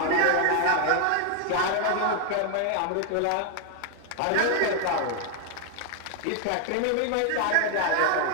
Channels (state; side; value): different; both; correlation 0.00